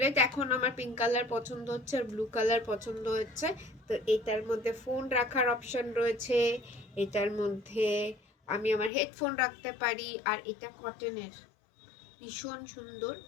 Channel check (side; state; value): right; drops out; at 8.9 s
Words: এখন আমার পিঙ্ক কালার পছন্দ হচ্ছে আর ব্লু কালার পছন্দ হচ্ছে। তো এটার মধ্যে ফোন রাখার অপশন রয়েছে, এটার মধ্যে আমি আমার হেডফোন রাখতে পারি, আর এটা কটনের, ভীষণ সুন্দর।